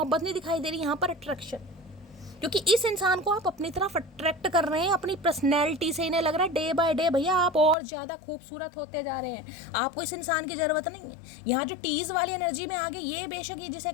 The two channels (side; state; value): right; drops out; at 7.8 s